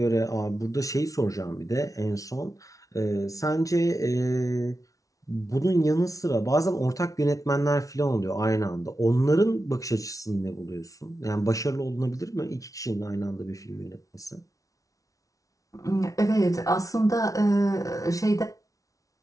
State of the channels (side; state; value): right; late; 0.17 ms